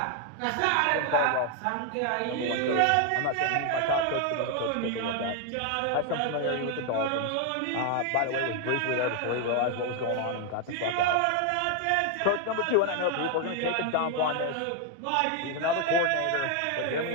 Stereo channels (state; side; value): different; both; correlation 0.01